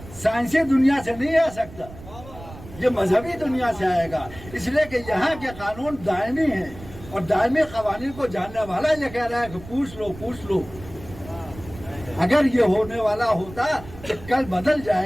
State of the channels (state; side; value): noise; right; rumble, 16 dB below the sound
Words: سائنسی دنیا سے نہیں آ سکتا, یہ مذہبی دنیا سے آئے گا. اس لیے کہ یہاں کے قانون دائمی ہیں اور دائمی قوانین کو جاننے والا یہ کہہ رہا ہے کہ پوچھ لو پوچھ لو. اگر یہ ہونے والا ہوتا کہ کل بدل